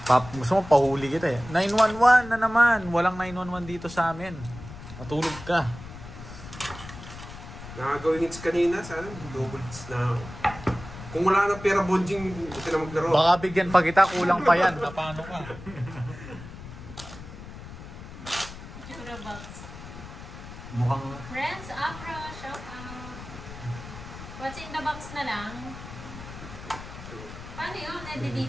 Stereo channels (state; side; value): noise; left; rumble, 13 dB below the sound